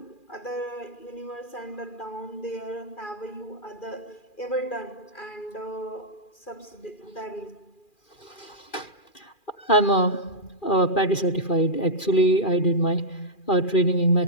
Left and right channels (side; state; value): right; late; 2.4 ms